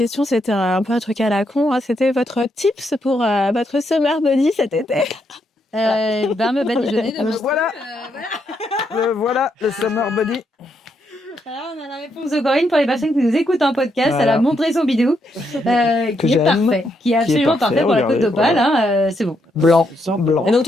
c'était un peu un truc à la con. Hein. C'était votre tips pour votre summer body cet été. Me badigeonner de Voilà. Voilà, le summer body. Alors, on a la réponse de Corinne pour les personnes qui nous écoutent en podcast. Voilà. Elle a montré son bidou, qui est j'aime, parfait, qui est absolument parfait, parfait pour la regardez, côte d'Opale. voilà. Hein, c'est bon. Blanc, blanc. Et donc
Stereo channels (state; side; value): normal; both; correlation 0.78